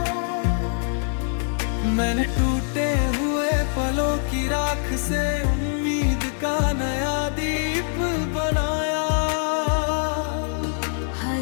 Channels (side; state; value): right; silent; 63 dB below the other